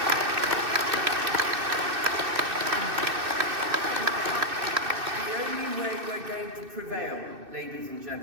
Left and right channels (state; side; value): late; left; 2.6 ms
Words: Prevail, ladies and